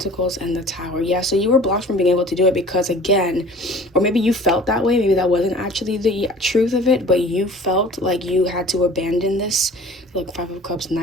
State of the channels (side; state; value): both; normal; correlation 0.46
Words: and the Tower. Yeah, so you were blocked from being able to do it because, again, or maybe you felt that way. Maybe that wasn't actually the truth of it, but you felt like you had to abandon this. Look, Five of Cups,